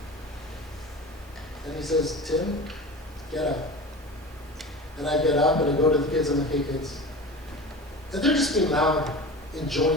And he says, Tim, get up. And I get up and I go to the kids and I'm like, hey kids. And they're just being loud,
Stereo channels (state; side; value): normal; both; correlation 0.33